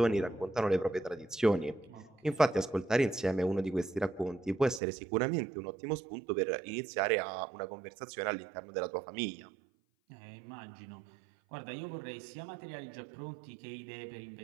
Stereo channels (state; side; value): drops out; left; at 4.8 s